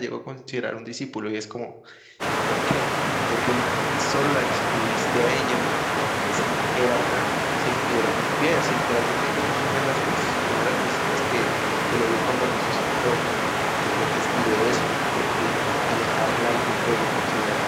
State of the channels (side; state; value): both; identical; correlation 1.00